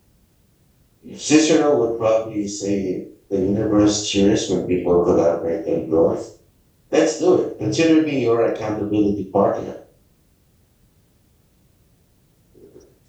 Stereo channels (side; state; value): both; identical; correlation 1.00